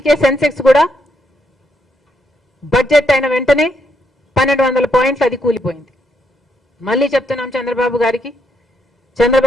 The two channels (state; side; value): normal; both; correlation 0.76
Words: సెన్సెక్స్ కూడా బడ్జెట్ అయిన వెంటనే 1,200 పాయింట్లు అది కూలిపోయింది. మళ్ళీ చెప్తున్నాం చంద్రబాబు గారికి,